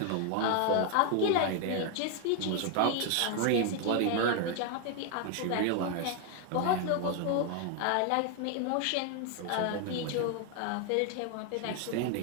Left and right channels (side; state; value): both; different; correlation 0.01